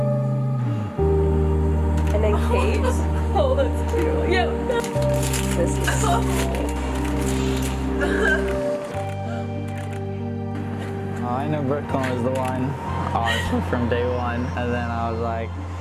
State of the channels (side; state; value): both; identical; correlation 1.00